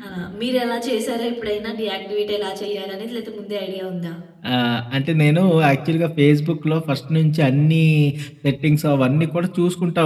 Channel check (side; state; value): both; identical; correlation 1.00